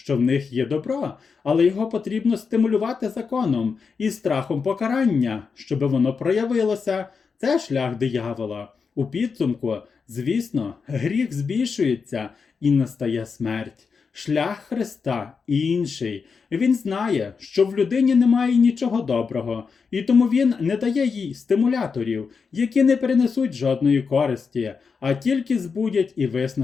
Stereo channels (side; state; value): right; quieter; 5.4 dB